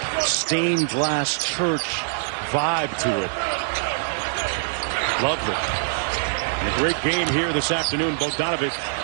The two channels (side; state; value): left; silent; digital silence